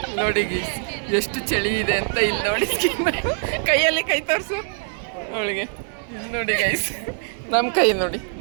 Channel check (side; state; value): left; silent; 62 dB below the other